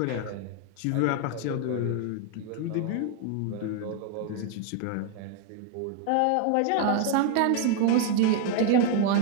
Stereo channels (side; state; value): both; different; correlation 0.00